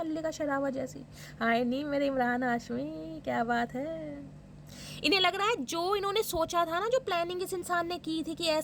शरावत जैसी। हाय नहीं मेरे इमरान हाशमी, क्या बात है। इन्हें लग रहा है जो इन्होंने सोचा था ना, जो प्लानिंग इस इंसान ने की थी कि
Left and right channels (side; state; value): both; identical; correlation 1.00